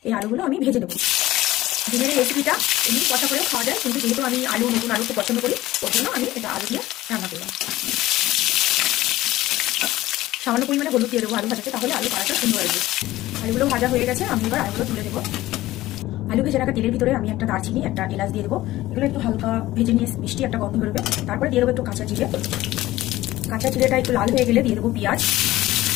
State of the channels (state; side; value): quieter; right; 16.3 dB